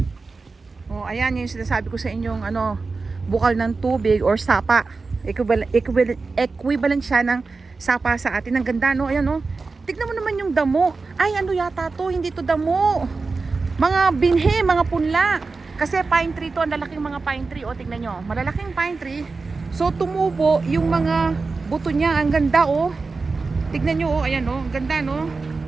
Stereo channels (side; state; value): left; quieter; 4.1 dB